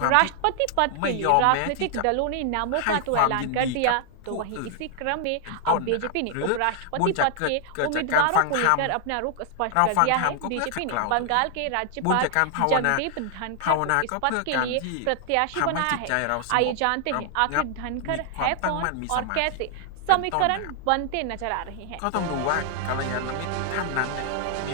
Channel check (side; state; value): both; different; correlation 0.00